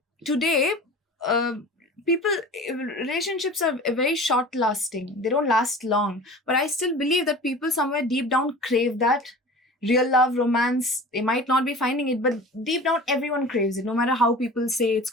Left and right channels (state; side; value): normal; both; correlation 0.39